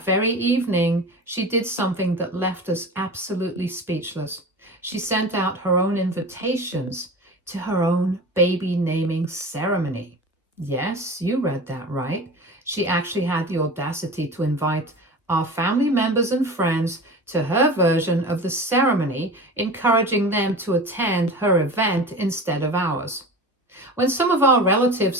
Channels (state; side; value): normal; both; correlation 0.33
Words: very evening, she did something that left us absolutely speechless. She sent out her own invitations to her own baby naming ceremony. Yes, you read that right. She actually had the audacity to invite our family members and friends to her version of the ceremony, encouraging them to attend her event instead of ours. When some of our relatives